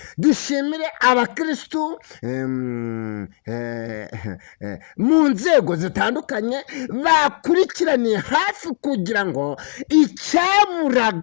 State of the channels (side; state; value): right; silent; 62 dB below the other